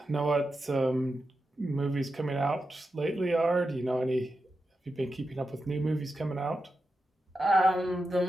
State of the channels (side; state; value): both; normal; correlation 0.89